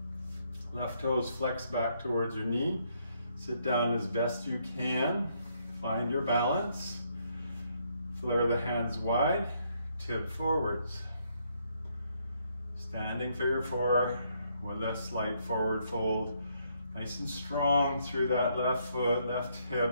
Left toes flex back towards your knee. Sit down as best you can. Find your balance. Flare the hands wide. Tip forwards. Standing figure 4 with a slight forward fold. Nice and strong through that left foot, left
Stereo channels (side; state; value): both; inverted; correlation -0.73